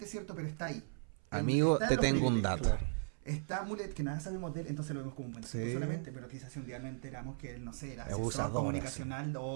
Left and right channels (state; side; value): silent; left; 53 dB below the other